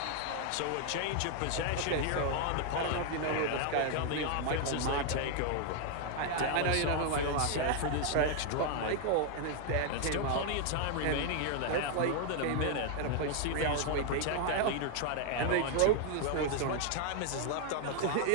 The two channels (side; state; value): both; different; correlation 0.00